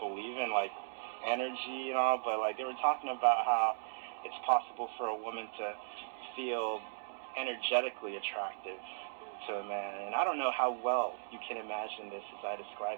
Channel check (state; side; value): silent; left; digital silence